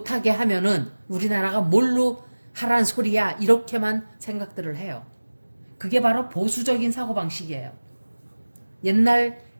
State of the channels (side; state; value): both; inverted; correlation -1.00